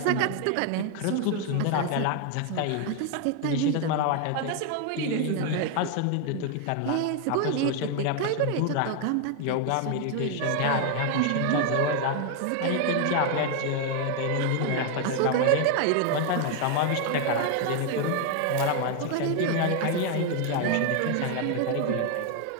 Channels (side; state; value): both; different; correlation 0.01